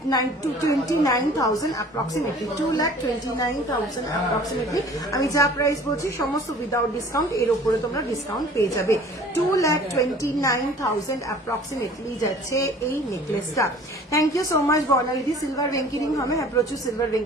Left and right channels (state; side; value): normal; both; correlation 0.48